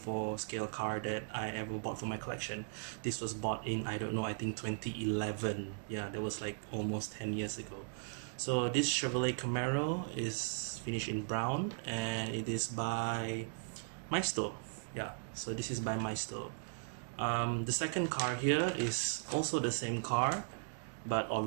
scale car that I ever bought for my collection. This was bought in, I don't know, I think 2011. Yeah, that was like almost 10 years ago. So this Chevrolet Camaro is finished in brown and it is by Maisto. Yeah, so this is by Maisto. The second car here is also the same car, but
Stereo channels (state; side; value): silent; left; digital silence